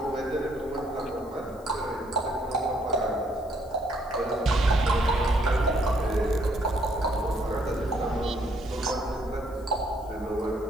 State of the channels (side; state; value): left; noise; hiss, 27 dB below the sound